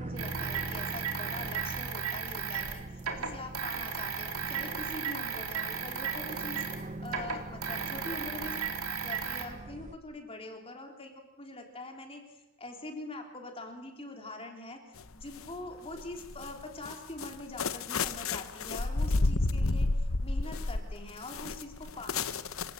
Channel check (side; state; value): both; normal; correlation 0.42